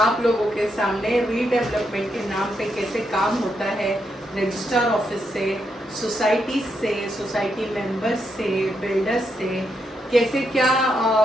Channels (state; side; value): normal; both; correlation 0.81